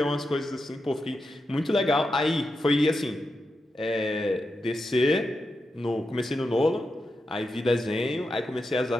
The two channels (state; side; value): normal; both; correlation 0.88